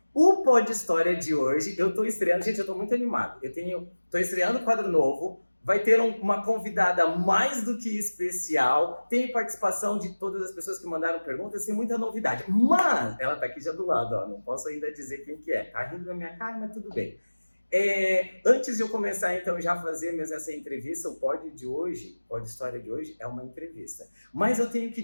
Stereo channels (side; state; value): both; inverted; correlation -1.00